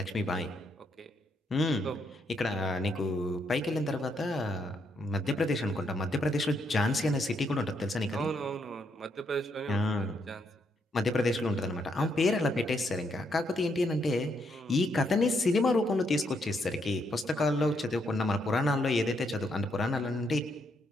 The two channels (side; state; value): both; normal; correlation 0.76